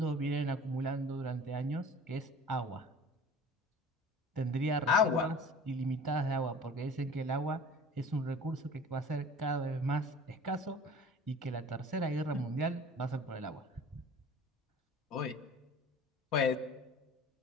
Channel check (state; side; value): normal; both; correlation 0.43